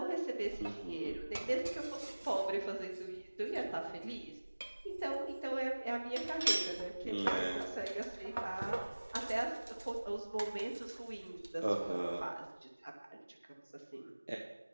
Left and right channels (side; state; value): both; inverted; correlation -1.00